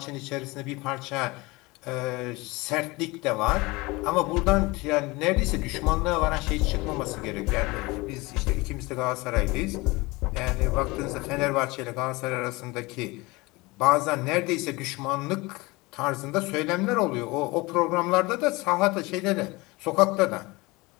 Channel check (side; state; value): right; quieter; 23.3 dB